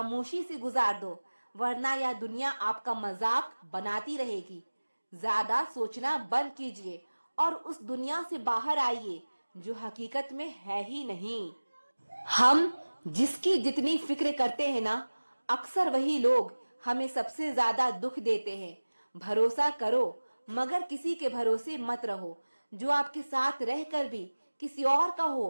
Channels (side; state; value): both; inverted; correlation -1.00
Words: से गुजार दो, वरना यह दुनिया आपका मजाक बनाती रहेगी। ज्यादा सोचना बंद कीजिए और उस दुनिया से बाहर आइए जो हकीकत में है ही नहीं। हम जिसकी जितनी फिक्र करते हैं ना, अक्सर वही लोग हमें सबसे ज्यादा दुख देते हैं। भरोसा करो मगर किसी के भरोसे मत रहो। जो आपके साथ रहकर भी किसी और का